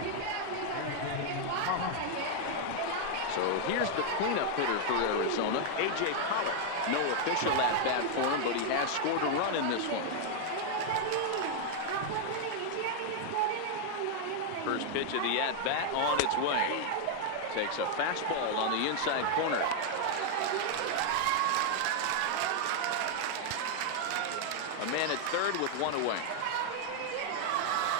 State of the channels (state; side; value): different; both; correlation 0.00